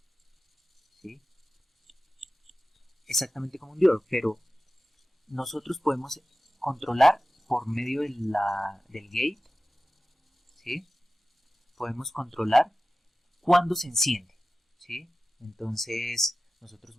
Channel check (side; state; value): both; normal; correlation 0.95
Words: ¿sí? Exactamente como un diodo, pero nosotros podemos controlar por medio del gate, ¿sí? Podemos controlar cuándo se enciende, ¿sí? Entonces nosotros